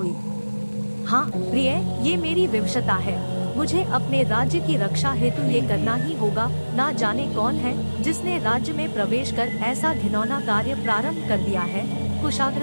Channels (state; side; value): inverted; both; correlation -1.00